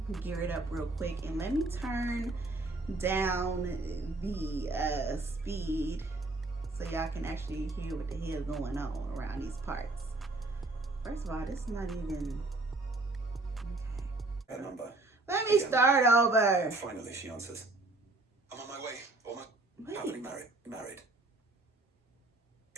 gear it up real quick, and let me turn down the speed so y'all can actually hear what the hell going on around these parts. First of all, this is not even okay. That number. Let me start over. Finally, she answers. I'm on my way. Almost happily married.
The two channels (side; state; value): left; quieter; 3.0 dB